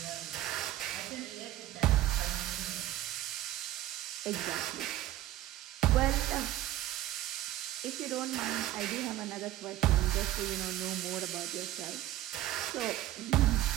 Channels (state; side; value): quieter; left; 14.2 dB